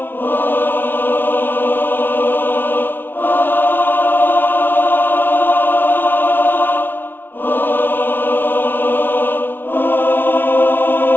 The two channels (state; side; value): late; right; 0.10 ms